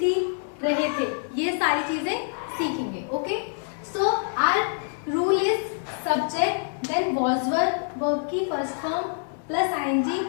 रहे थे, ये सारी चीजें सीखेंगे। Okay, so our rule is subject then was verb, verb की first form plus ING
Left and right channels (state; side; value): silent; right; 61 dB below the other